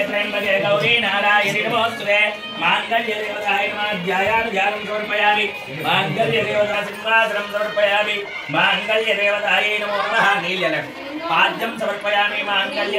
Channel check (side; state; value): both; identical; correlation 1.00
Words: త్రయంబకే గౌరీ నారాయణి నమోస్తుతే మాంగళ్య దేవతాయ నమః ధ్యాయామి ధ్యానం సమర్పయామి మాంగళ్య దేవతా సింహాసనం సమర్పయామి మాంగళ్య దేవతాయై నమో నమః నీళ్యలం పాద్యం సమర్పయామి మాంగళ్య